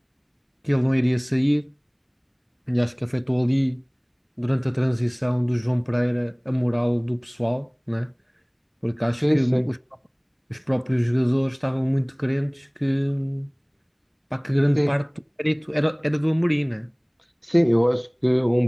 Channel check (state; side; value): identical; both; correlation 1.00